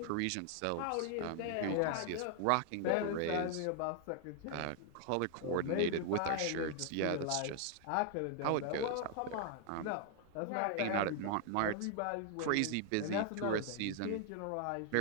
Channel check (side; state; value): both; different; correlation 0.00